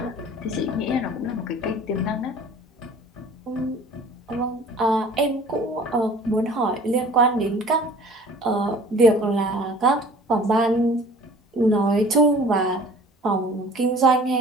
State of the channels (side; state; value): both; normal; correlation 0.47